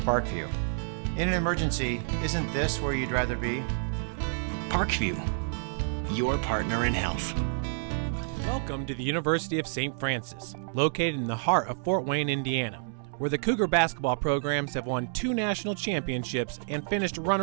In an emergency, isn't this where you'd rather be? Parkview, your partner in health. Welcome to the University of St. Francis, located in the heart of Fort Wayne, Indiana, where the Cougar basketball programs have won 2 national championships and finished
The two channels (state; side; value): silent; left; digital silence